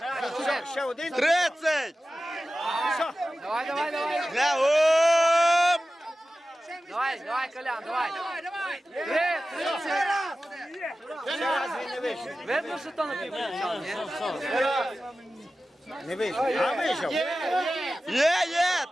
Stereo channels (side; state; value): both; normal; correlation 0.95